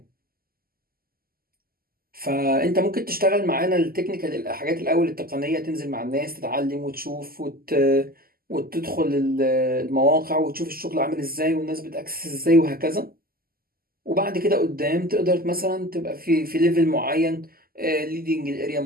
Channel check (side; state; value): left; late; 0.42 ms